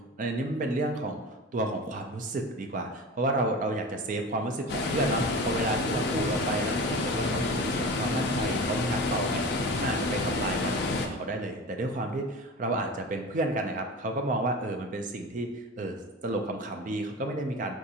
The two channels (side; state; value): both; normal; correlation 0.32